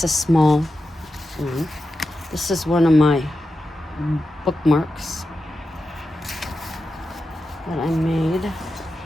a small one. This is one of my bookmarks that I made.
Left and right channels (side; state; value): both; normal; correlation 0.90